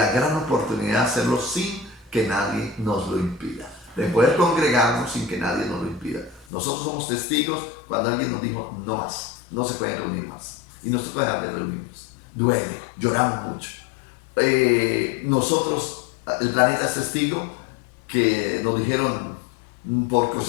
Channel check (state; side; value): drops out; right; at 6.5 s